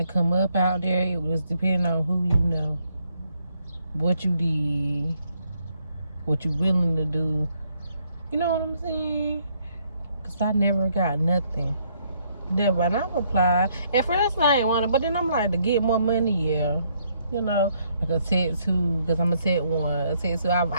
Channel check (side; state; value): both; inverted; correlation -0.71